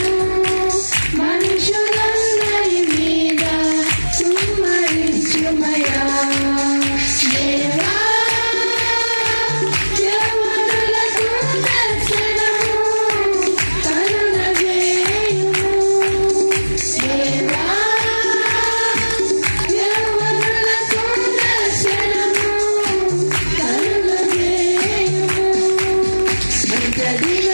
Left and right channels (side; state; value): both; inverted; correlation -1.00